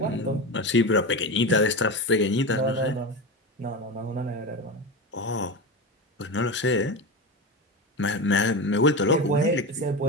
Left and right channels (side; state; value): both; normal; correlation 0.22